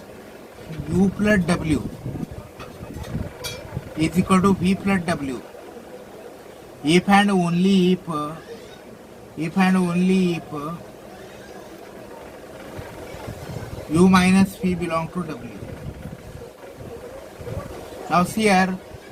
u plus w is equal to v plus w if and only if u minus v belong to w. Now see here,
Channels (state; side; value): identical; both; correlation 1.00